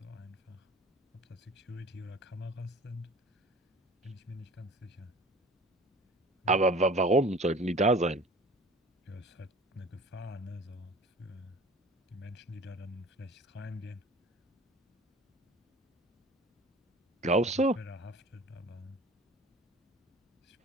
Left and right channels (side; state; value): both; normal; correlation 0.44